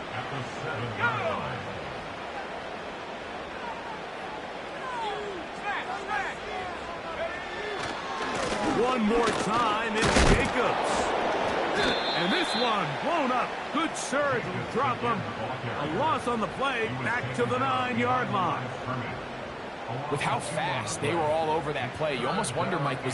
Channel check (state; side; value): identical; both; correlation 1.00